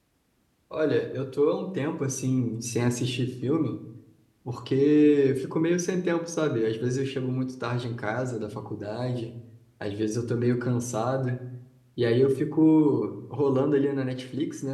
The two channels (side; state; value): both; identical; correlation 1.00